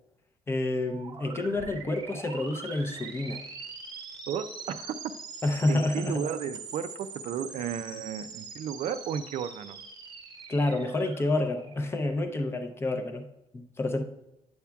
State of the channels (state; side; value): normal; both; correlation 0.74